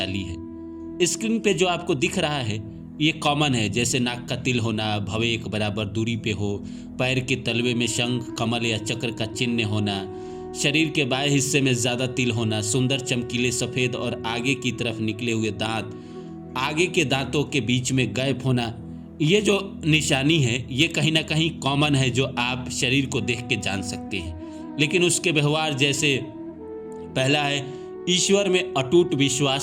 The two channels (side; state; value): both; identical; correlation 1.00